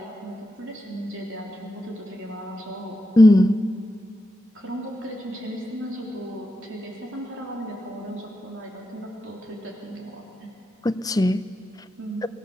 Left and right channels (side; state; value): both; normal; correlation 0.87